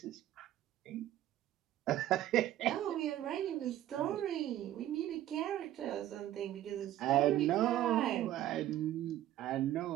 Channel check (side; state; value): left; quieter; 13.1 dB